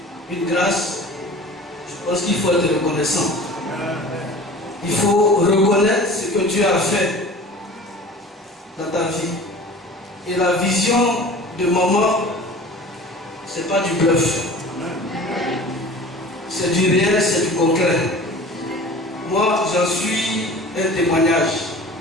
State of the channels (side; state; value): both; normal; correlation 0.41